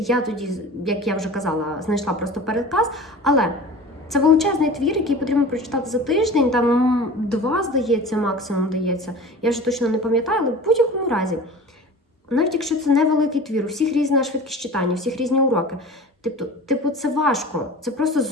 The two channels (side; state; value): both; normal; correlation 0.38